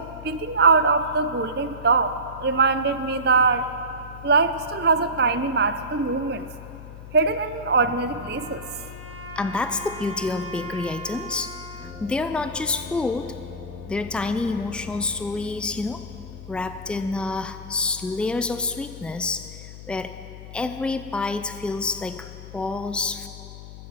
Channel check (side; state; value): left; noise; hum, 13 dB below the sound